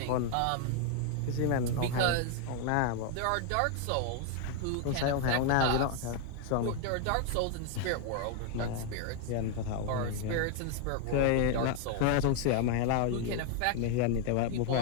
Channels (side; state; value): both; different; correlation 0.00